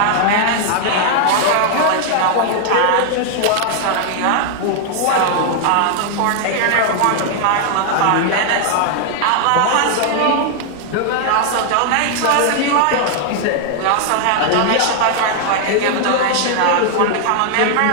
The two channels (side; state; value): both; different; correlation 0.00